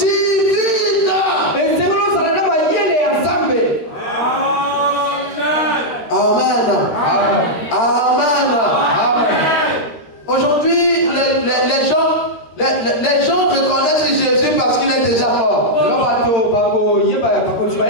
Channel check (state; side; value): late; right; 13 ms